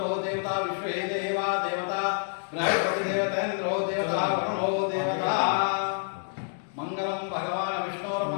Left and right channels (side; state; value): right; silent; digital silence